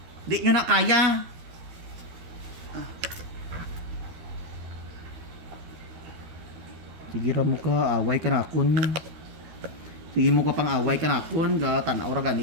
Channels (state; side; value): late; left; 13 ms